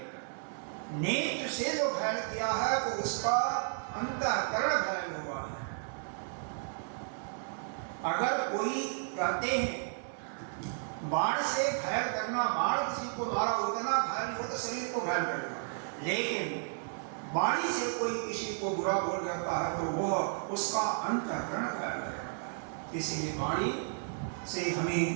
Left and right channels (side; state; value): left; silent; 56 dB below the other